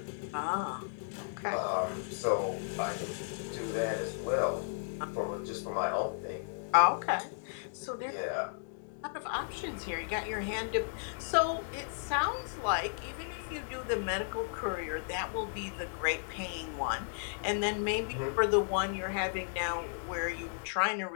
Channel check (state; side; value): silent; right; digital silence